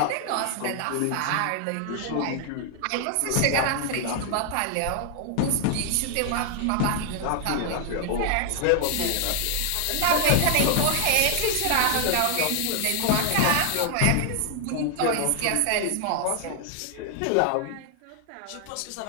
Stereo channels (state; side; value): different; both; correlation 0.00